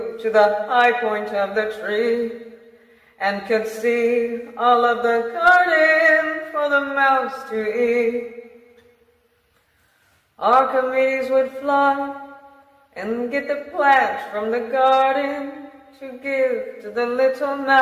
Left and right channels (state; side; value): identical; both; correlation 1.00